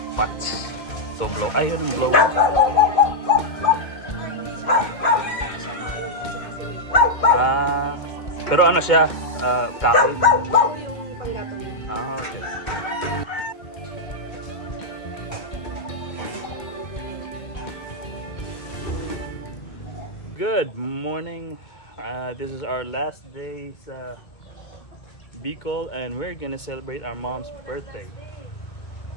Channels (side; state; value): right; late; 2.2 ms